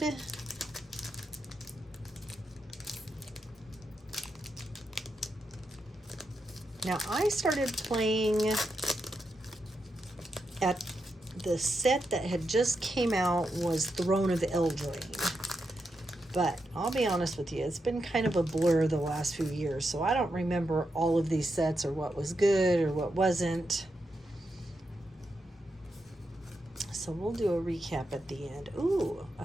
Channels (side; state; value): both; normal; correlation 0.85